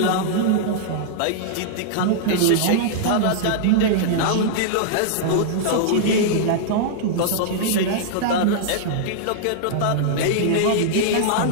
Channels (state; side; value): different; both; correlation -0.01